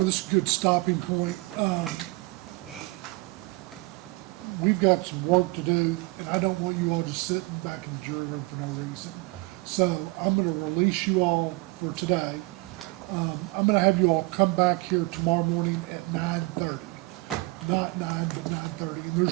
this is a good stopping point. We've got some work to do, and I don't want you all just sitting back in the jury room for no reason. So I'm gonna release you all for today. I'm gonna have you all come back here tomorrow morning at 9:30. Not 9, but 9:30. And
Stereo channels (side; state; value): left; quieter; 24.2 dB